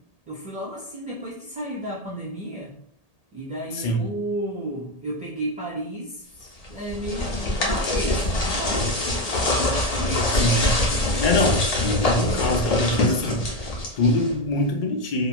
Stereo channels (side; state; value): right; late; 1.8 ms